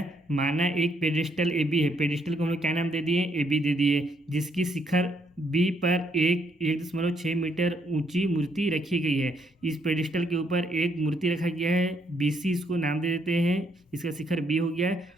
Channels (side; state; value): both; normal; correlation 0.72